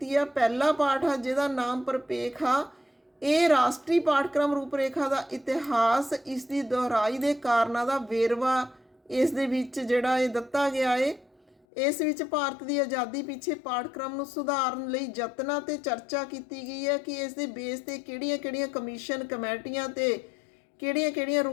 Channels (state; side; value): drops out; right; at 11.6 s